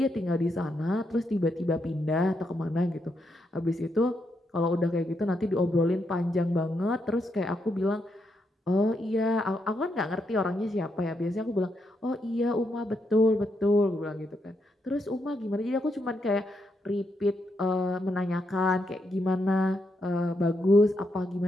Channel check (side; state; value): both; normal; correlation 0.80